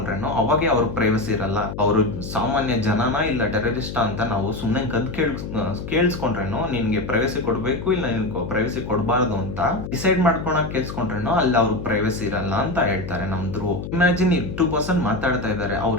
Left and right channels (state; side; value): noise; left; hum, 8 dB below the sound